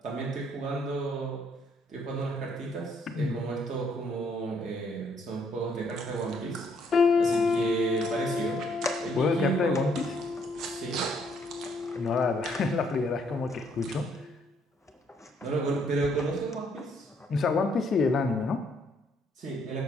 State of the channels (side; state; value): both; normal; correlation 0.69